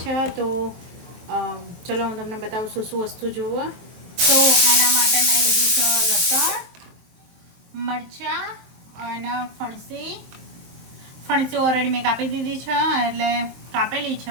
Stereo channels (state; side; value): late; left; 23 ms